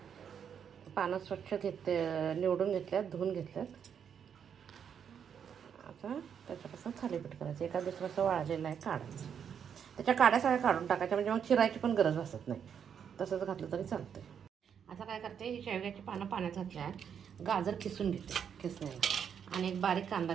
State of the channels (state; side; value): quieter; left; 7.8 dB